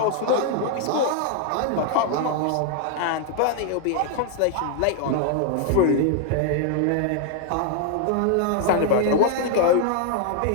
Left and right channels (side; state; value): both; different; correlation 0.00